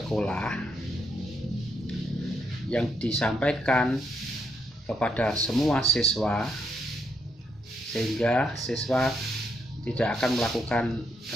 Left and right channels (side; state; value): both; normal; correlation 0.75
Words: yang disampaikan kepada semua siswa sehingga siswa tidak akan melakukan